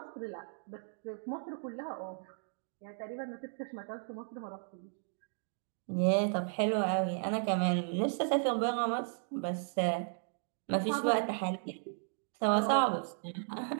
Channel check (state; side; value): silent; left; digital silence